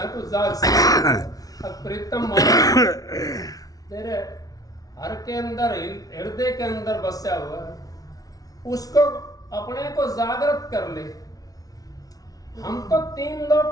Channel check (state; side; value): late; right; 0.18 ms